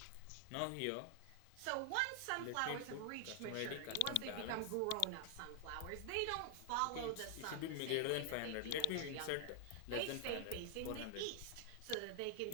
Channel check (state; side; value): different; both; correlation 0.00